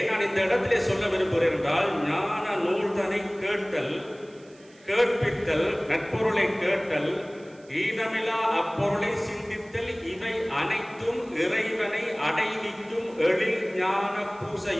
நான் இந்த இடத்திலே சொல்ல விரும்புகிறேன் என்றால், ஞான நூல்தனை கேட்டல், கேட்பித்தல், நட்பொருளை கேட்டல், ஈனமிலா அப்பொருளை சிந்தித்தல், இவை அனைத்தும் இறைவனை அடைவிக்கும் எழில் ஞான பூசை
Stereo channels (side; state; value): right; noise; hiss, 29 dB below the sound